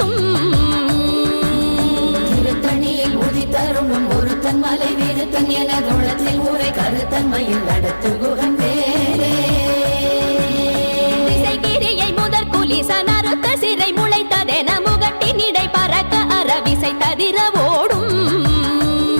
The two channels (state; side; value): inverted; both; correlation -1.00